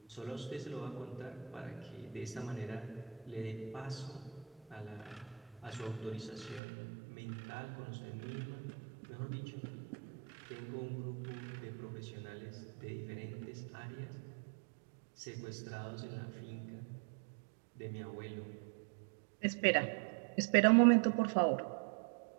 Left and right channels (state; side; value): drops out; left; at 6.6 s